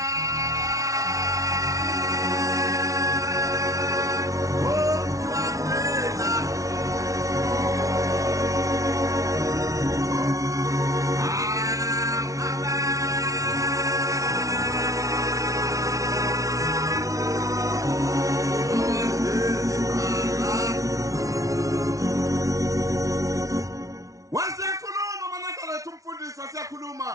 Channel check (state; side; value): late; left; 0.16 ms